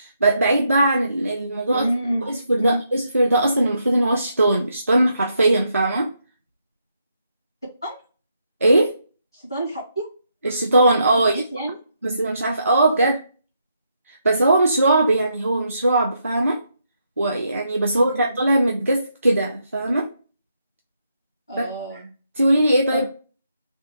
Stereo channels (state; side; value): inverted; both; correlation -0.79